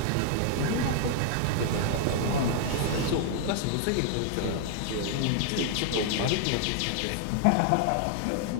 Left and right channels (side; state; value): both; different; correlation 0.00